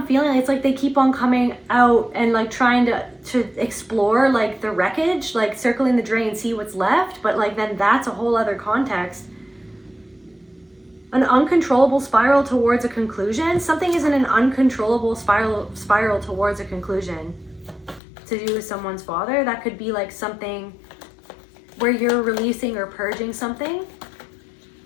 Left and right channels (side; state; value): right; drops out; at 18.0 s